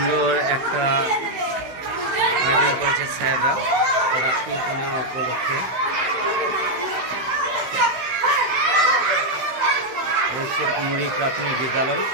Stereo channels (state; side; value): late; left; 16 ms